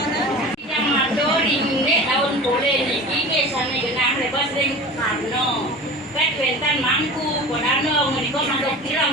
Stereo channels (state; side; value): normal; both; correlation 0.36